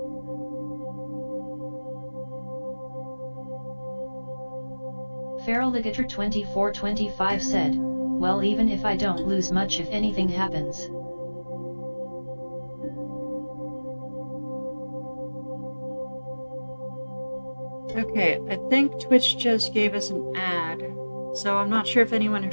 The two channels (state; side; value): inverted; both; correlation -1.00